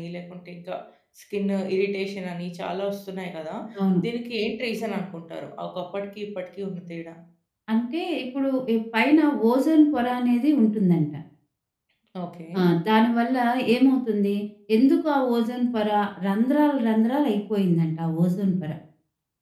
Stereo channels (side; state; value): both; identical; correlation 1.00